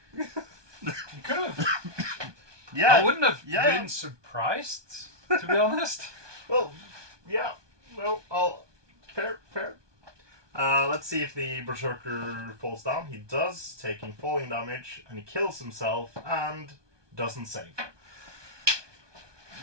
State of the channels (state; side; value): late; left; 1.2 ms